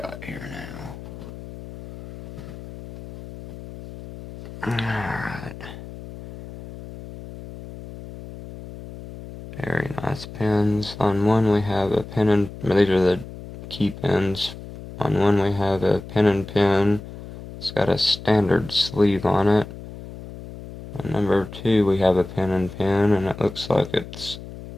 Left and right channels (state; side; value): noise; left; hum, 14 dB below the sound